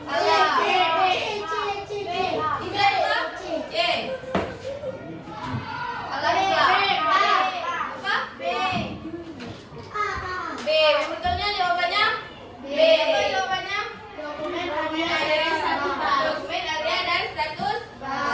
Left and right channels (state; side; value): identical; both; correlation 1.00